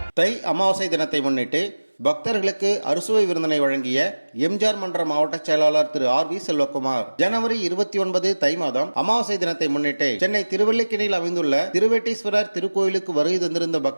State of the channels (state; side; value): inverted; both; correlation -1.00